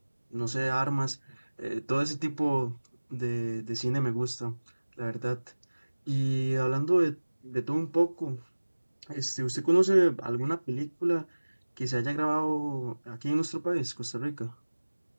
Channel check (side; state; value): both; inverted; correlation -1.00